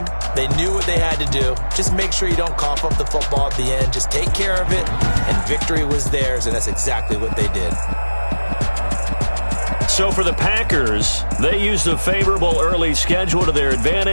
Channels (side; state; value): both; inverted; correlation -1.00